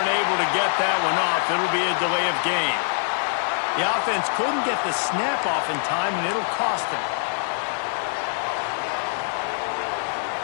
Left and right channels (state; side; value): silent; right; digital silence